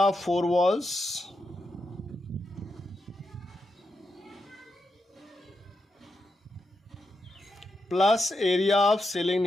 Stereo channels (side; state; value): both; normal; correlation 0.85